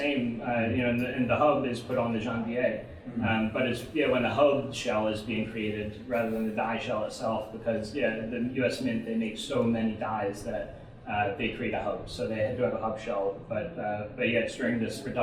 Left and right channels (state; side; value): identical; both; correlation 1.00